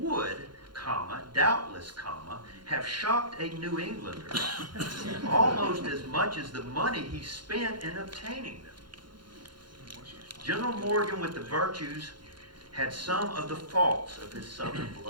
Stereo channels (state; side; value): late; left; 0.71 ms